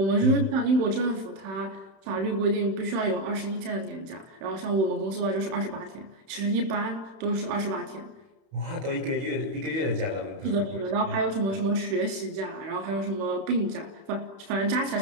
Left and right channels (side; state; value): left; late; 31 ms